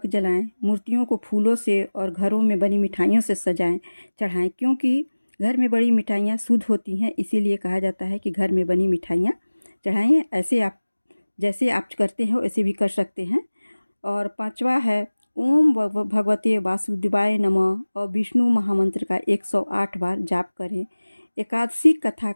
जलाएं। मूर्तियों को फूलों से और घरों में बनी मिठाइयों से चढ़ाएं, क्योंकि घर में बड़ी मिठाइयाँ शुद्ध होती हैं, इसीलिए कहा जाता है कि घर में बनी मिठाइयाँ चढ़ाएं। ऐसे आप जैसे आप करते हो ऐसे भी कर सकते हैं। और 5वां है ओम भगवते वासुदेवाय नमः और विष्णु महामंत्र का 108 बार जाप करें। एकादशी कथा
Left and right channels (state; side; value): inverted; both; correlation -1.00